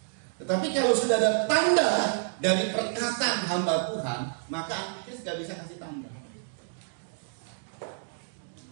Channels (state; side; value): silent; left; digital silence